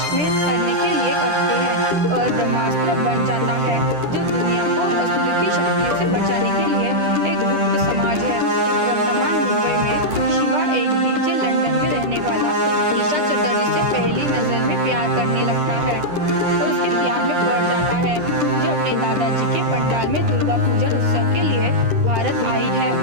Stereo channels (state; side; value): late; left; 10 ms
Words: में करने के लिए करते हैं और ब्रह्मास्त्र बन जाता है, जो दुनिया को असुर की शक्तियों से बचाने के लिए एक गुप्त समाज है। वर्तमान मुंबई में शिवा एक डीजे लंदन में रहने वाला ईशा चटर्जी से पहली नजर में प्यार करने लगता है और उसके प्यार में पड़ जाता है, जो अपने दादाजी के पंडाल में दुर्गा पूजन उत्सव के लिए भारत आई है।